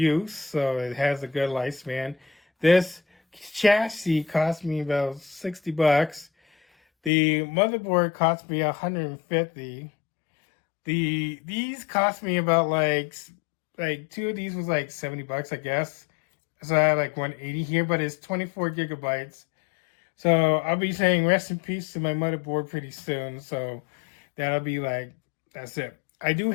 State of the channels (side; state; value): right; drops out; at 7.1 s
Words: So it has a good lifespan. This chassis cost me about $60. The motherboard cost me $150. These cost me about like two of these was like $70, I guess. So I have like 180 here, but it's 24 gigabytes. So I'll be saying rest in peace to my motherboard pretty soon. So that'll be like, that's it. I do